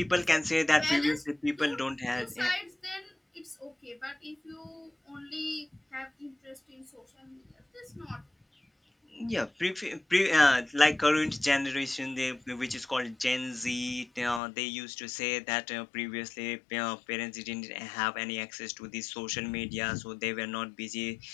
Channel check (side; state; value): right; drops out; at 14.4 s